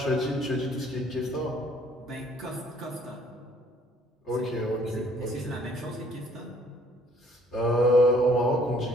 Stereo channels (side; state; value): both; normal; correlation 0.60